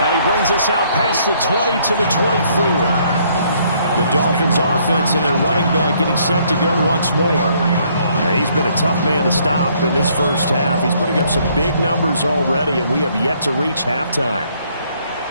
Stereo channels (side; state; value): both; inverted; correlation -0.66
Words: he brings us out past the 20 to the 24. The Dolphins offense and their running back getting set to go once more. He's been a tough man to stop in this first half. He's putting up some big numbers already, and we have yet to reach halftime.